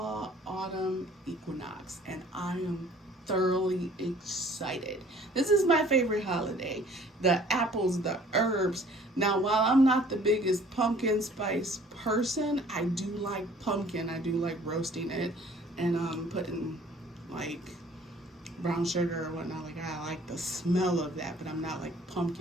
autumn equinox, and I am thoroughly excited. This is my favorite holiday. The apples, the herbs. Now, while I'm not the biggest pumpkin spice person, I do like pumpkin. I do like roasting it and putting like brown sugar or whatnot. Like, I like the smell of that, but I'm not like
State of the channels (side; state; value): both; normal; correlation 0.54